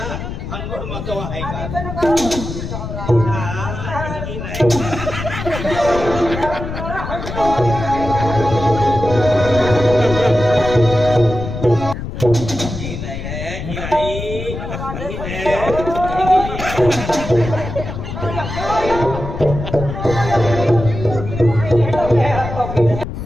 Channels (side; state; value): left; noise; rumble, 7 dB below the sound